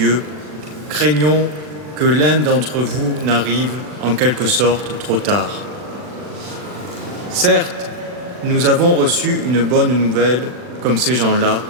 craignons que l'un d'entre vous n'arrive en quelque sorte trop tard. Certes, nous avons reçu une bonne nouvelle comme ces gens-là,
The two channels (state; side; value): late; left; 40 ms